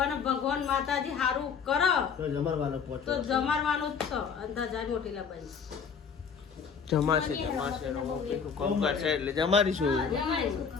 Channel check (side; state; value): right; quieter; 6.3 dB